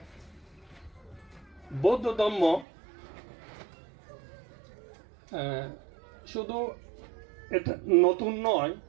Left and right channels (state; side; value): drops out; left; at 2.7 s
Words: বৌদ্ধ ধর্ম শুধু এটা নতুন নয়।